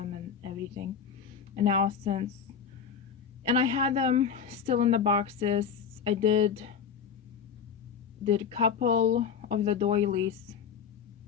and everything. And now and I had them still in the boxes. I did a couple of the doilies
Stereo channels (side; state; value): right; quieter; 6.9 dB